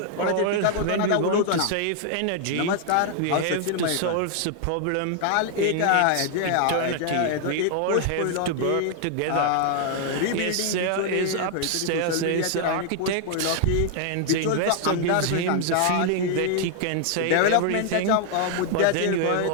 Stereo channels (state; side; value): different; both; correlation 0.00